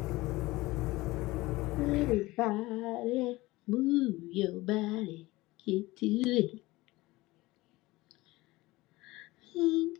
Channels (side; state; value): right; quieter; 20.0 dB